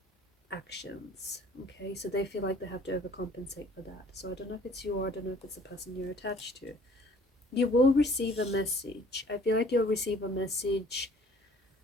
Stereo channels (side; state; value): both; normal; correlation 0.54